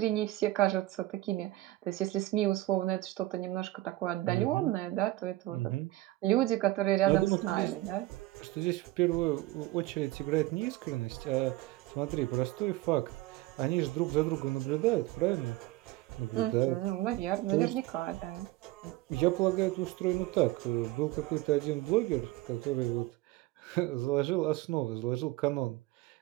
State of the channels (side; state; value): left; quieter; 17.6 dB